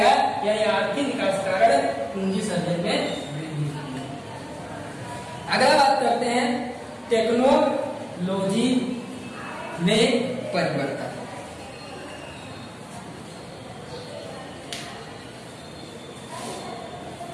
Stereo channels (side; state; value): both; identical; correlation 1.00